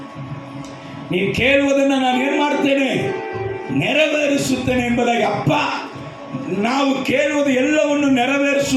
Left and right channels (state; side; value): identical; both; correlation 1.00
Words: ನೀವು ಕೇಳುವುದನ್ನು ನಾನು ಏನು ಮಾಡ್ತೇನೆ? ನೆರವೇರಿಸುತ್ತೇನೆ ಎಂಬುದಾಗಿ. ಅಪ್ಪ, ನಾವು ಕೇಳುವುದು ಎಲ್ಲವನ್ನು